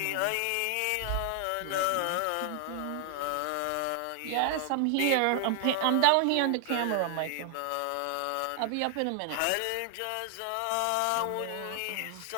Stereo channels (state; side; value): different; both; correlation 0.00